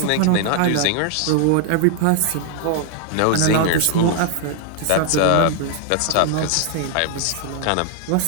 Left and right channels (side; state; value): both; different; correlation 0.01